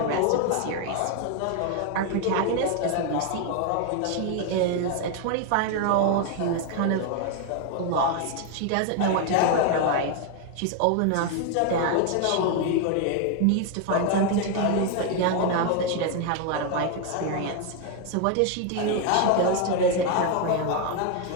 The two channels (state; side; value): different; both; correlation 0.01